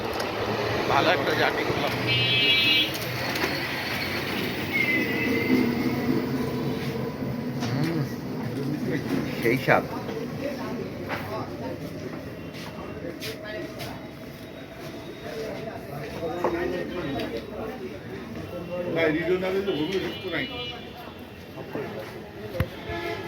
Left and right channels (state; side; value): identical; both; correlation 1.00